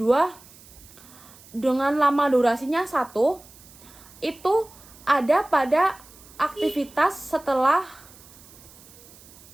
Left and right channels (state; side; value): noise; right; hiss, 22 dB below the sound